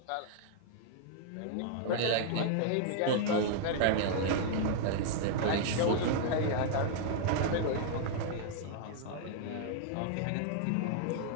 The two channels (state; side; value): different; both; correlation -0.01